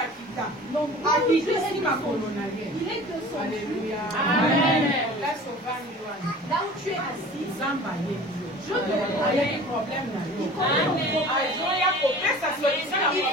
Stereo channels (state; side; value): normal; both; correlation 0.42